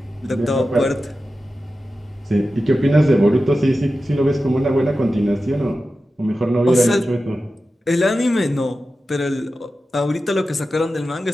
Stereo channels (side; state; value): both; normal; correlation 0.93